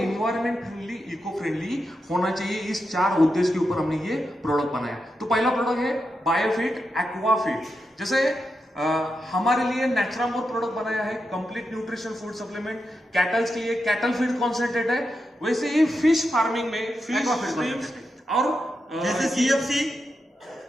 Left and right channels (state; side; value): normal; both; correlation 0.87